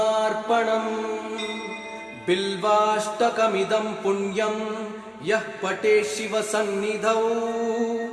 बिल्वाष्टकमिदं पुण्यं यः पठेत् शिवसन्निधौ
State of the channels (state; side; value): identical; both; correlation 1.00